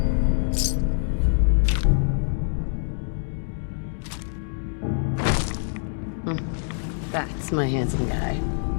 That's my handsome guy.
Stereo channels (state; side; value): silent; right; digital silence